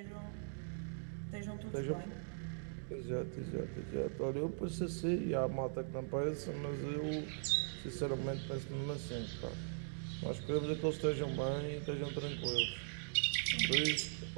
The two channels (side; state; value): left; silent; digital silence